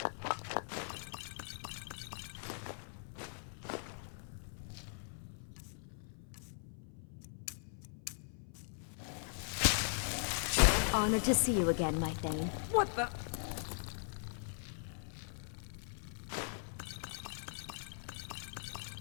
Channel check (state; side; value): silent; right; 51 dB below the other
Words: Honored to see you again, my Thane. What the?